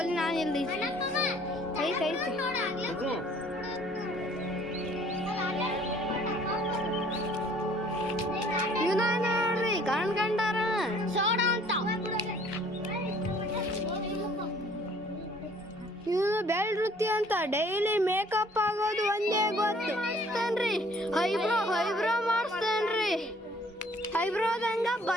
ನಾನು ಇಲ್ದಿ ಐತೆ ಇವನ ನೋಡ್ರಿ ಕಣ್ಕಂಡಾರ ಸೋಡ ಅಂತ. ಇವನು ಬೆಳ್ ವೃತ್ತಿ ಅಂತ ಡೈಲಿ ಮೇಕಪ್ ಆಗೋದು ಒಂದೇ ಗೊತ್ತು. ಐಬ್ರೋ ಮಾಡಿಸ್ತೇನ್ರಿ. ಐಬ್ರೋದಂಗ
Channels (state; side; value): normal; both; correlation 0.57